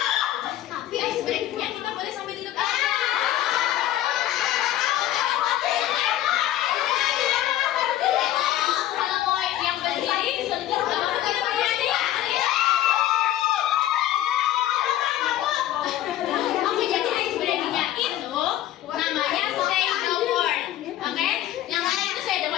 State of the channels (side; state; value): right; quieter; 13.2 dB